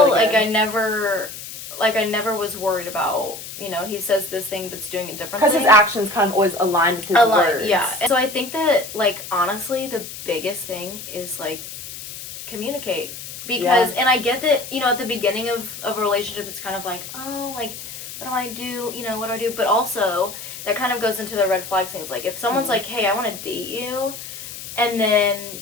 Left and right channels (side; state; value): left; noise; hiss, 11 dB below the sound